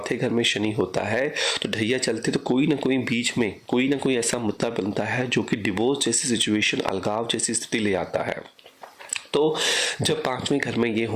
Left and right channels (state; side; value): identical; both; correlation 1.00